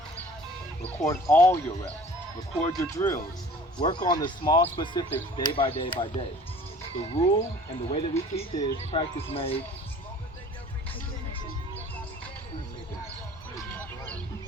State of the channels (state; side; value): normal; both; correlation 0.48